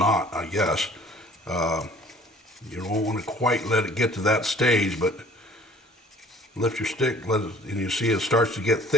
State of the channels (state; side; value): normal; both; correlation 0.52